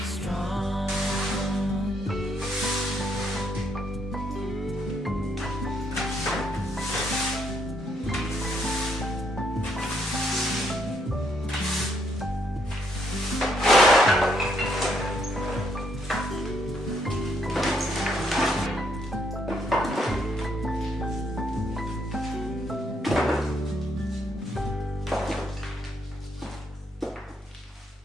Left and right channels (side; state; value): both; normal; correlation 0.73